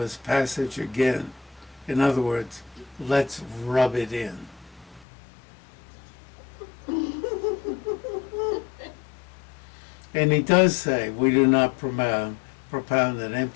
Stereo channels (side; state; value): right; drops out; at 5.1 s